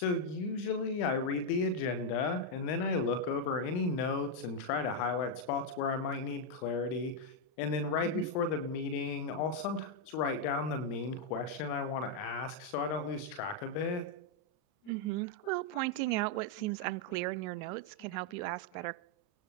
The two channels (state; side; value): late; right; 39 ms